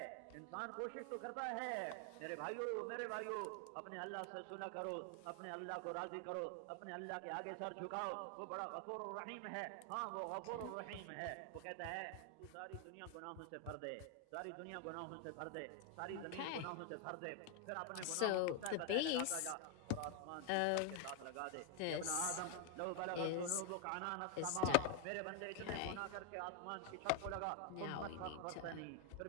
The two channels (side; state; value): both; different; correlation 0.00